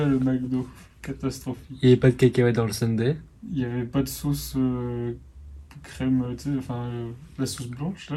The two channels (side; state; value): both; identical; correlation 1.00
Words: le McDo, catastrophique. Il n'y avait pas de cacahuètes dans le sundae. Il n'y avait pas de sauce crème, tu sais, enfin la sauce blanche